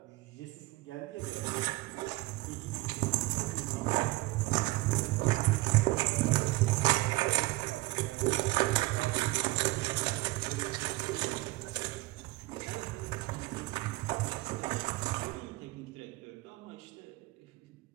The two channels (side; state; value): left; quieter; 20.8 dB